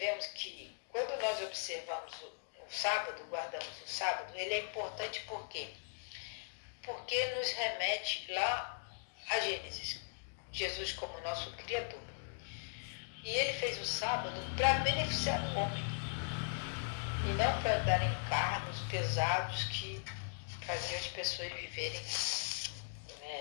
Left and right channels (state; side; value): silent; right; digital silence